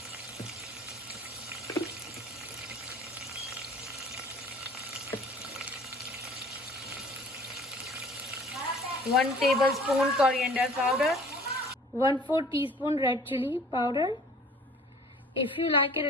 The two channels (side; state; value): both; normal; correlation 0.50